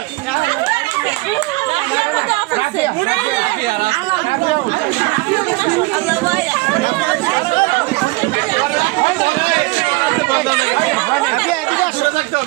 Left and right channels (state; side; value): quieter; left; 23.1 dB